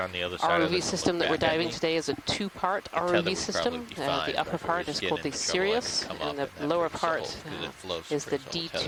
the other side of ROV it, system that we're diving today is a 2-part tether ROV would system. probably be fine, The upper but if it part was is getting called the into trouble, I could Sirius, come and up the and lower have to part solve, 'cause it floats is the for its whole D2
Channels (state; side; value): identical; both; correlation 1.00